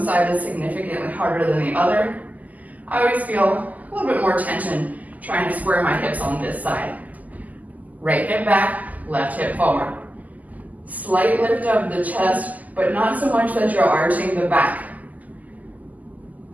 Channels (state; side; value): late; left; 0.079 ms